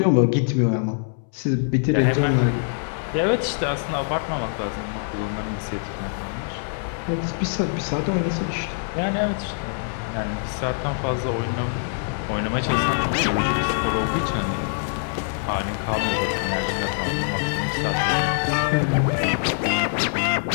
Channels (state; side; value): silent; right; 63 dB below the other